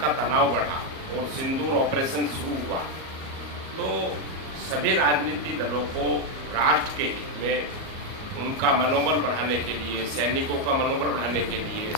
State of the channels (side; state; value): left; late; 37 ms